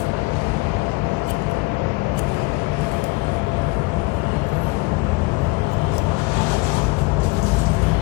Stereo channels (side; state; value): right; quieter; 24.5 dB